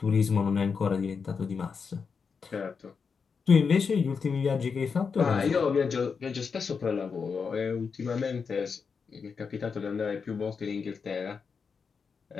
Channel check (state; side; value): quieter; right; 5.6 dB